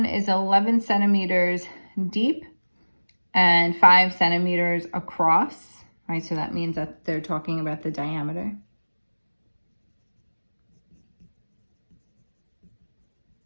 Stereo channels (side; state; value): both; inverted; correlation -1.00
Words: is 11 centimeters deep and 5 centimeters across. Right, so that means that they're talking about the diameter.